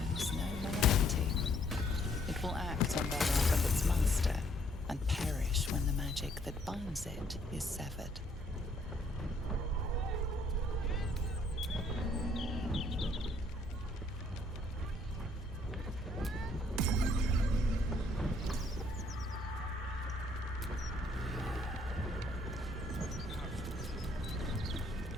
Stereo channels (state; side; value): normal; both; correlation 0.66